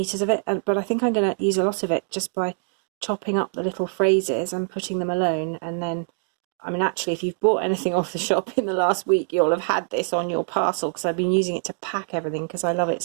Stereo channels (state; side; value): silent; left; 58 dB below the other